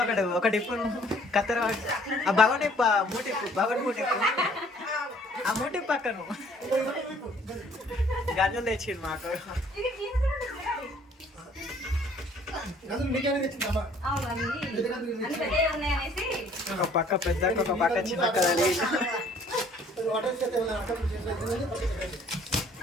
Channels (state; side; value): normal; both; correlation 0.58